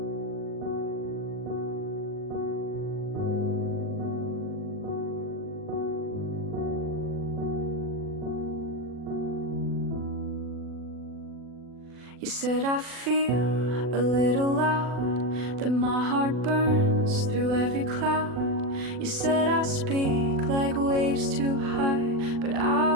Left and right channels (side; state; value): left; late; 40 ms